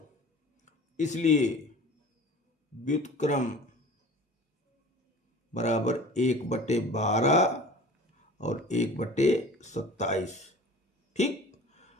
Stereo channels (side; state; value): both; normal; correlation 0.41